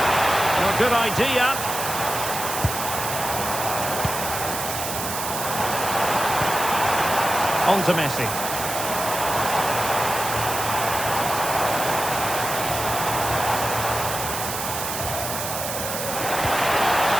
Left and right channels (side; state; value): right; noise; hiss, 5 dB below the sound